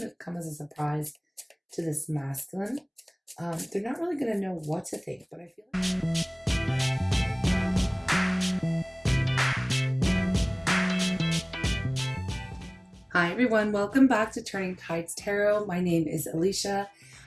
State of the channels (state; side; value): identical; both; correlation 1.00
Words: to come as a surprise to this masculine. They're not really going to know what to think, but I feel like. Hi, everyone. Welcome back to Turning Tides Tarot. My name is Alishia,